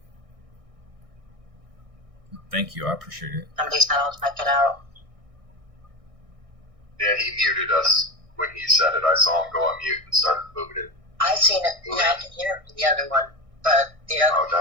Thank you. I appreciate it. Somebody's now check it out. Yeah, he muted us when he said it. I saw him go on mute and started moving it. I seen it. Yeah, I can hear it from the other one. But the other Oh,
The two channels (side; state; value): left; late; 1.6 ms